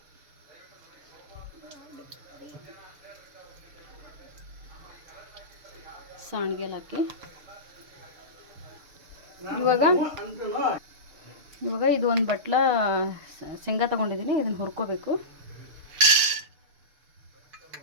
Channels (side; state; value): left; late; 6.7 ms